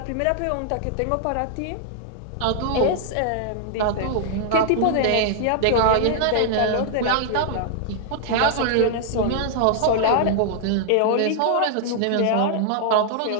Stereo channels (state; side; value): different; both; correlation -0.01